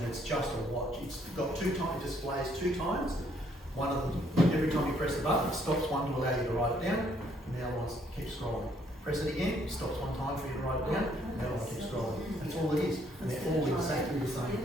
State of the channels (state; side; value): normal; both; correlation 0.67